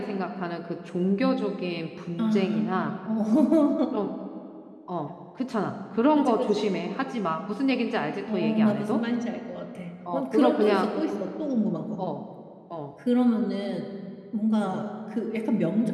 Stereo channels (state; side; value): identical; both; correlation 1.00